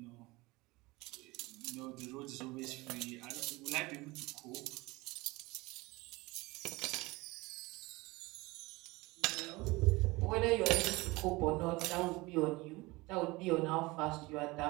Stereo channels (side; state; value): left; quieter; 22.4 dB